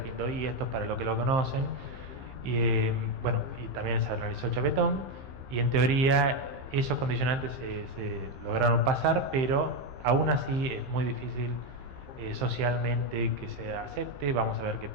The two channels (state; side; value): late; left; 15 ms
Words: esto para los que lo conocen, y bueno, y también se realizó Chapetón, y en teoría esos condicionantes se lograron pasar, pero aún así es muy difícil socialmente que se acepte. Vamos a ver qué